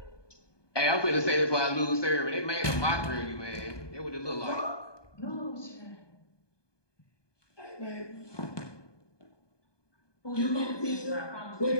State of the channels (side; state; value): right; late; 1.2 ms